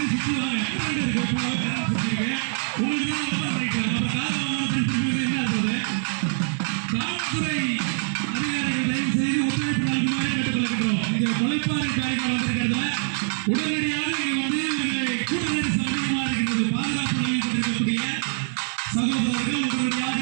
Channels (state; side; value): silent; left; 57 dB below the other